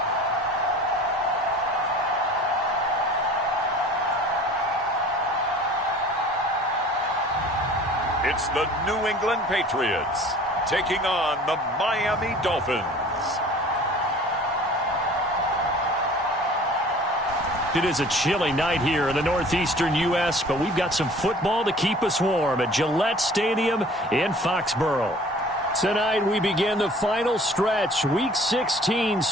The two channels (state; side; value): normal; both; correlation 0.47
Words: It's the New England Patriots taking on the Miami Dolphins. It is a chilly night here in the northeastern U.S., but we've got some football to keep us warm at Gillette Stadium in Foxborough. Tonight we begin the final stretch. Week 16